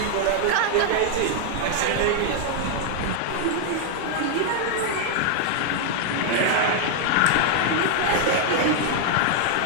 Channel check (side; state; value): both; different; correlation -0.01